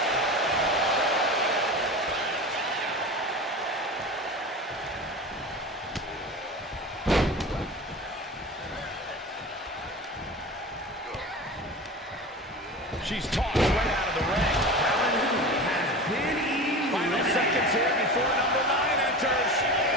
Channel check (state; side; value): normal; both; correlation 0.32